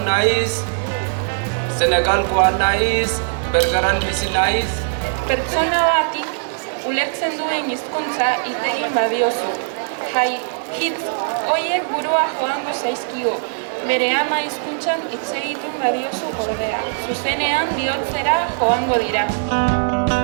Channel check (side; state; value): left; silent; digital silence